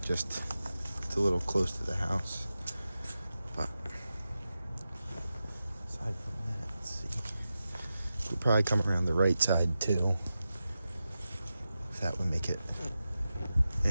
Just it's a little close to the house. But aside from that, let's see. Could probably come around the right side too. If that would make it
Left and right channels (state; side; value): inverted; both; correlation -0.92